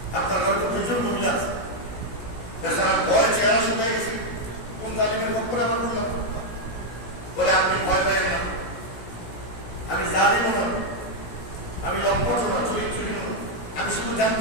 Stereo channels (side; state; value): right; late; 17 ms